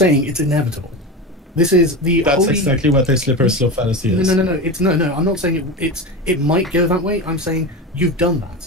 it's inevitable. This is the That's exactly what a slippery slope fallacy is. No. I'm not saying it might go that way. I'm saying you've done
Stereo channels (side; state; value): both; normal; correlation 0.23